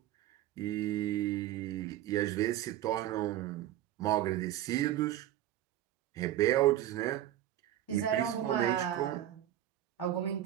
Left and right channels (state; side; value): quieter; left; 12.8 dB